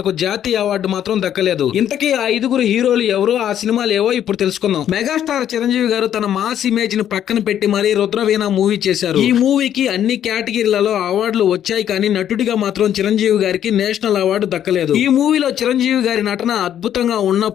జాతీయ అవార్డు మాత్రం దక్కలేదు. ఇంతకీ ఆ 5గురు హీరోలు ఎవరు, ఆ సినిమాలు ఏవో ఇప్పుడు తెలుసుకుందాం. మెగాస్టార్ చిరంజీవి గారు తన మాస్ ఇమేజ్ ని పక్కన పెట్టి మరీ రుద్రవీణ మూవీ చేశారు. ఈ మూవీకి అన్ని కేటగిరీలలో అవార్డులు వచ్చాయి, కానీ నటుడిగా మాత్రం చిరంజీవి గారికి నేషనల్ అవార్డు దక్కలేదు. ఈ మూవీలో చిరంజీవి గారి నటన అద్భుతంగా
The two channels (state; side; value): quieter; right; 10.3 dB